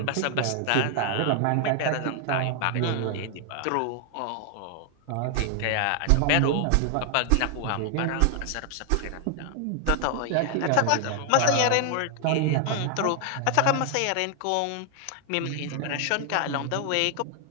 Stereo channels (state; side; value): different; both; correlation 0.00